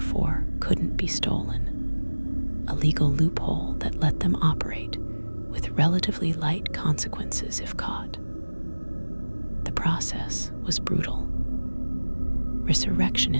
couldn't be stolen, a legal loophole that let them operate with relatively light consequences if caught. The process was brutal.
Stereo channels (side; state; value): both; inverted; correlation -1.00